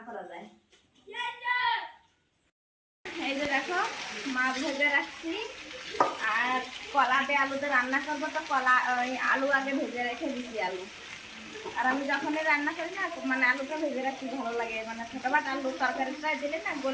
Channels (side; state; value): both; identical; correlation 1.00